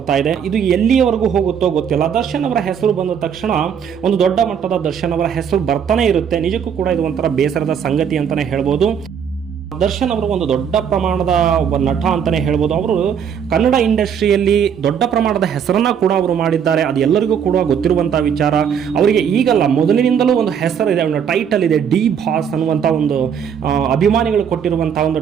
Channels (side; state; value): left; quieter; 7.8 dB